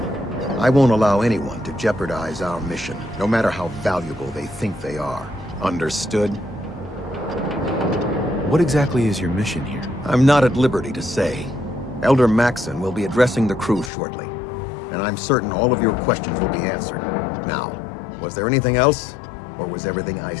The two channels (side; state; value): right; drops out; at 13.9 s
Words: I won't allow anyone to jeopardize our mission, no matter how valuable they think they are. Understood? What exactly is your mission here? I'm not at liberty to say. Elder Maxon will be addressing the crew shortly, and I'm certain all of your questions will be answered. Now, was there anything else, or was everything I